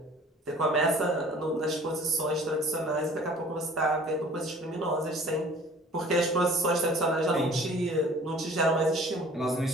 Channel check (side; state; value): both; normal; correlation 0.49